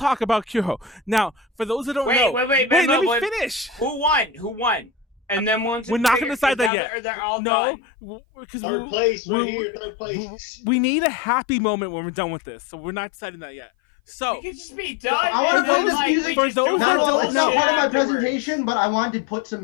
about Q-Ho. Now, for those that don't know, wait. Let me finish. Who won? And then once we're not gonna decide that yet. No, because we need a happy moment when we're done with this. So we're not deciding that yet. So it could just be done. For those that don't know, part of my afterwards. presentation, but I wanted to put some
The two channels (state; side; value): drops out; right; at 6.7 s